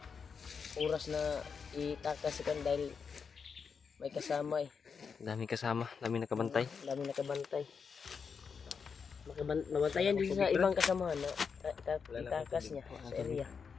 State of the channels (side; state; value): right; quieter; 5.9 dB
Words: oras na itakas kan dahil may kasama eh. Dami kasama, dami nakabantay. Dami nakabantay. Nabantayan din sa ibang kasamahan na itakas niya sa area.